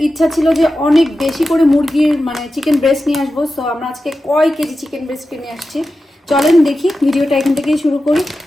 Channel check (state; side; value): normal; both; correlation 0.92